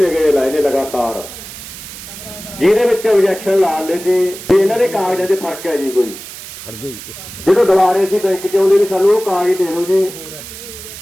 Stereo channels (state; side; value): noise; right; hiss, 13 dB below the sound